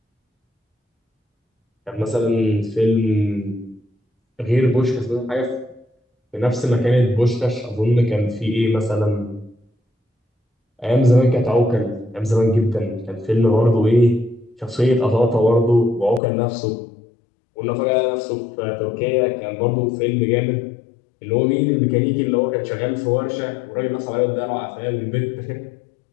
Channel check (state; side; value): drops out; right; at 16.2 s